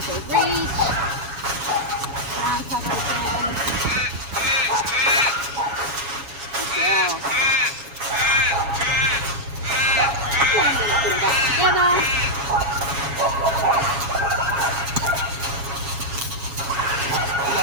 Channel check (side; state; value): left; late; 7.2 ms